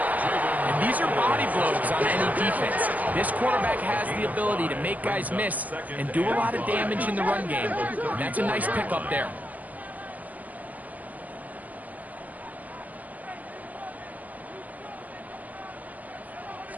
these are body blows on any defense. This quarterback has the ability to make guys miss and do a lot of damage in the run game. And that's a nice pickup there.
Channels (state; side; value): late; left; 0.077 ms